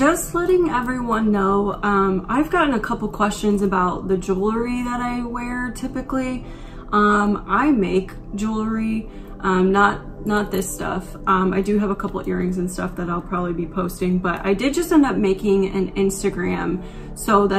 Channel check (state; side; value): identical; both; correlation 1.00